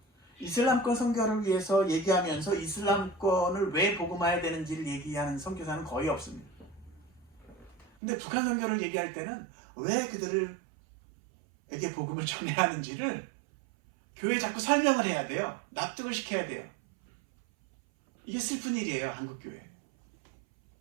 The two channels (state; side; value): drops out; left; at 7.9 s